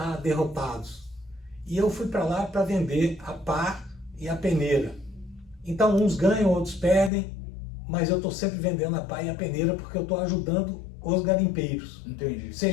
derrotados. E eu fui para lá para vender a pá e a peneira. Então uns ganham, outros perdem, mas eu estou sempre vendendo a pá e a peneira porque eu estou ajudando os garimpeiros. Entendi.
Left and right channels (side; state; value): right; drops out; at 7.1 s